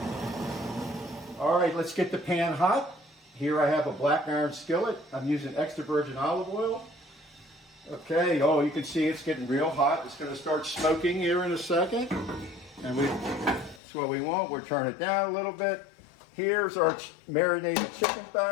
All right, let's get the pan hot. Here I have a black iron skillet. I'm using extra virgin olive oil. Okay, oh, you can see it's getting real hot. It's going to start smoking here in a second. And that's what we want. We'll turn it down a little bit. Here's our marinated chicken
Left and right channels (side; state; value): right; drops out; at 13.8 s